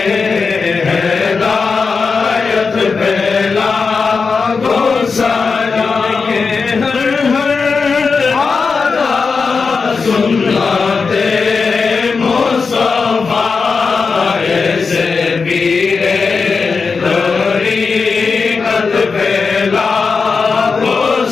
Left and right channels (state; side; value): quieter; right; 4.8 dB